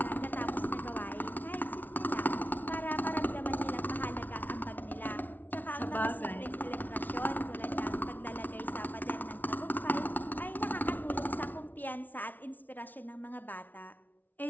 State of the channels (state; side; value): late; right; 0.082 ms